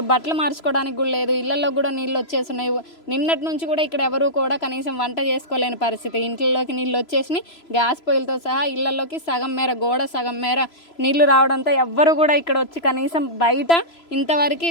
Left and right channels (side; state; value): right; late; 3.0 ms